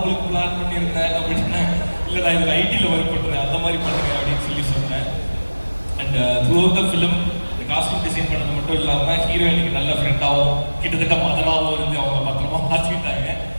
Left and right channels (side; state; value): both; inverted; correlation -1.00